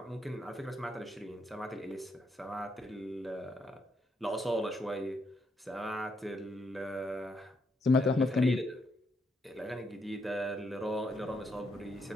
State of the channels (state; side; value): normal; both; correlation 0.77